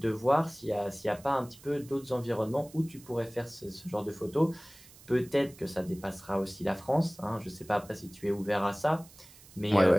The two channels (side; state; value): right; noise; hiss, 22 dB below the sound